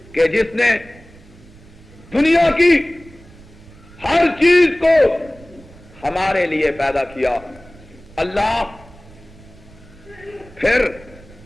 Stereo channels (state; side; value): noise; right; rumble, 23 dB below the sound